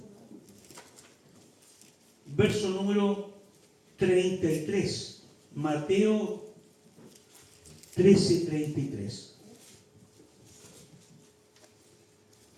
verso número 33. Mateo 13, 33.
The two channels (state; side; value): identical; both; correlation 1.00